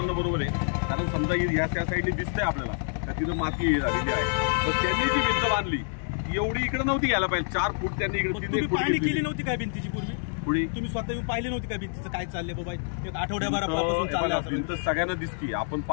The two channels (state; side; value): silent; right; digital silence